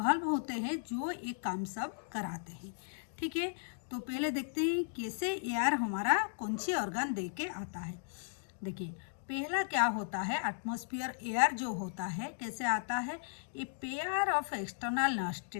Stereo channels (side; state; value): right; silent; digital silence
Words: होते हैं जो ये काम सब कराते हैं। ठीक है, तो पहले देखते हैं कैसे एयर हमारा कौन सी ऑर्गन दे के आता है। देखिए पहला क्या होता है, एटमॉस्फेयर एयर जो होता है कैसे आता है, a pair of external